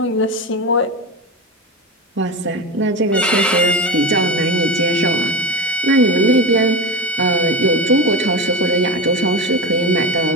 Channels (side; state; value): both; normal; correlation 0.22